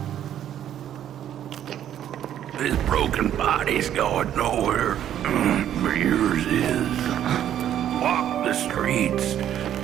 This broken body's going nowhere, but yours is. Walk the streets,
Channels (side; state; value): left; quieter; 10.7 dB